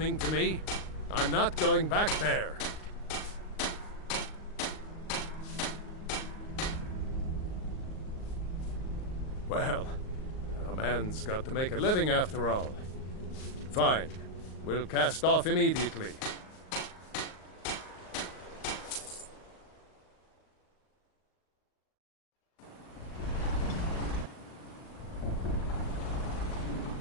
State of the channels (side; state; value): right; late; 38 ms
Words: to me? I'm not going back there. Well, a man's got to make a living after all. Fine. We'll cast off immediately.